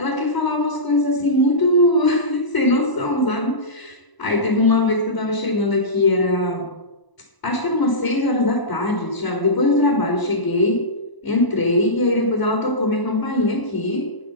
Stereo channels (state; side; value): late; right; 1.0 ms